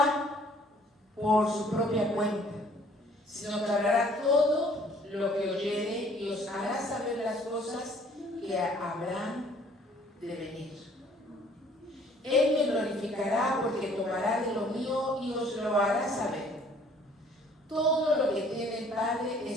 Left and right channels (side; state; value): both; normal; correlation 0.57